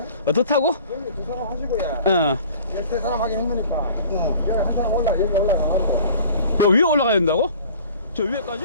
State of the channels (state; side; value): inverted; both; correlation -0.47